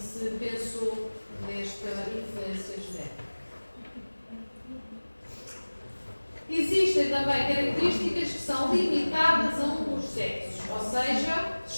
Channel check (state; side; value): inverted; both; correlation -1.00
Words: pensou nesta influência genética. Existem também características que são limitadas a um dos sexos, ou seja,